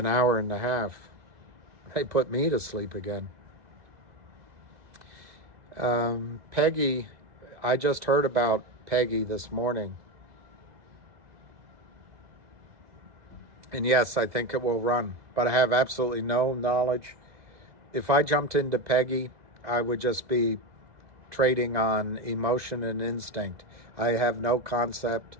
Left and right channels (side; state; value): left; late; 2.0 ms